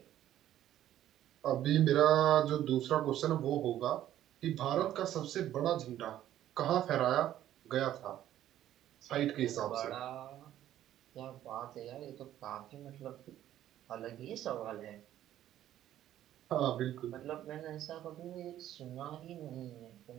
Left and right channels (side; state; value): left; quieter; 12.3 dB